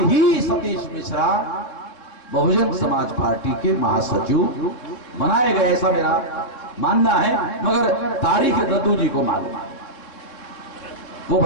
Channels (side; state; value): right; late; 3.7 ms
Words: ही सतीश मिश्रा बहुजन समाज पार्टी के महासचिव बनाए गए, ऐसा मेरा मानना है, मगर तारीख दद्दू जी को मालूम है, वो